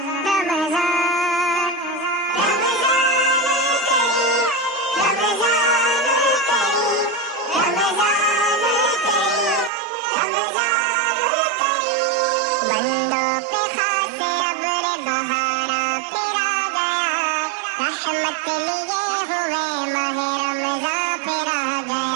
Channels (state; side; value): drops out; left; at 9.7 s